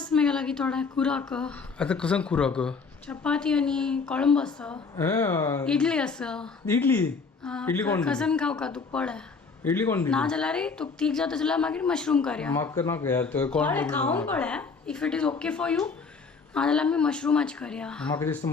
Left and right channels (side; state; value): right; quieter; 4.8 dB